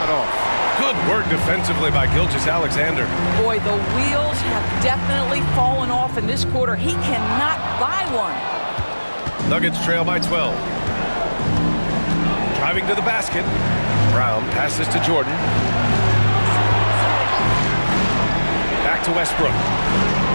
off. Good work defensively by Gilgeous-Alexander. Boy, the wheels have definitely fallen off in this quarter. He cannot buy one. Nuggets trail by 12. Driving to the basket. Brown passes to Jordan. Back to Westbrook.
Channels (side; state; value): both; inverted; correlation -1.00